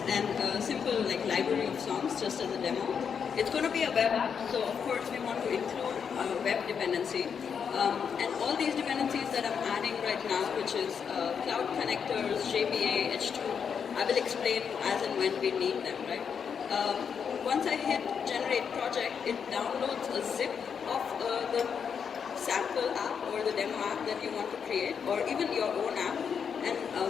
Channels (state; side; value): quieter; right; 6.9 dB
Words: and a simple library of songs just as a demo. It's going to be a web app, so of course we want to include web dependency. And all these dependencies that I'm adding right now, which is cloud connectors, JPA, H2, I will explain as and when we need them, right? Once I hit generate project, it downloads a zip of the sample app or the demo app that you want to create, or even your own app. And